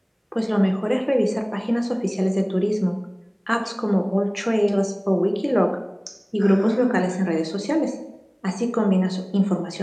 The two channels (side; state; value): both; identical; correlation 1.00